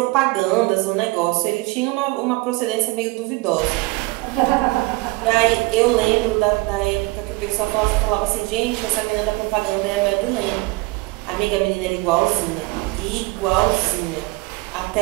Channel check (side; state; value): left; quieter; 22.8 dB